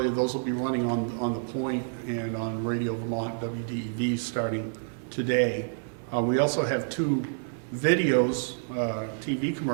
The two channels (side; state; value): left; silent; digital silence